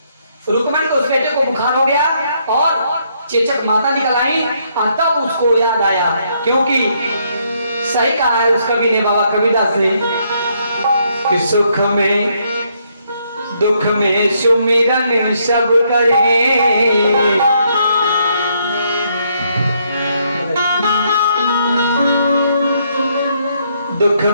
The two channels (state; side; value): inverted; both; correlation -0.72